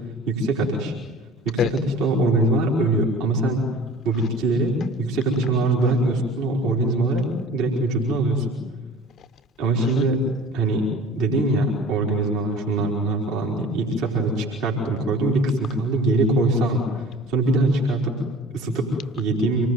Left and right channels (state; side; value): normal; both; correlation 0.44